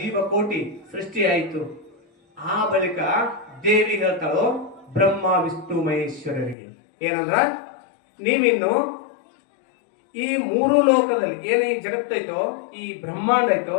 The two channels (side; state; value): right; drops out; at 6.6 s